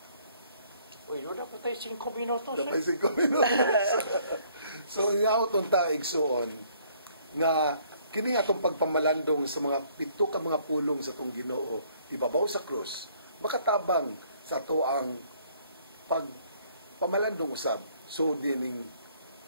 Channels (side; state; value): both; inverted; correlation -0.62